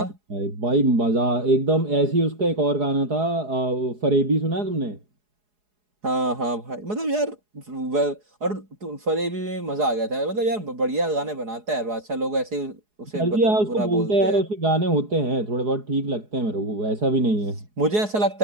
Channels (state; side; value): late; left; 4.8 ms